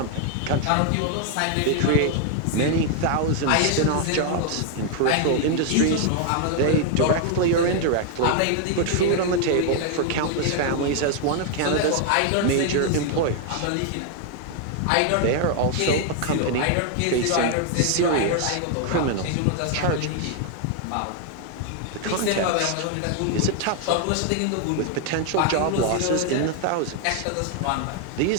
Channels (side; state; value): both; different; correlation 0.00